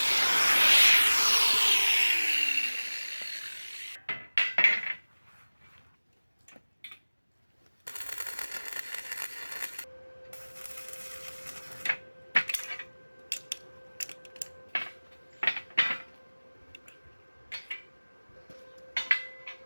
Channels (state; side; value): inverted; both; correlation -1.00